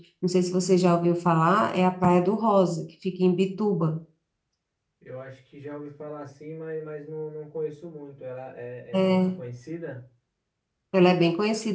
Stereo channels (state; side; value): identical; both; correlation 1.00